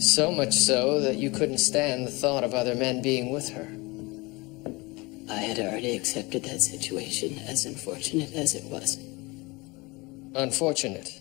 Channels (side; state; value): right; quieter; 24.7 dB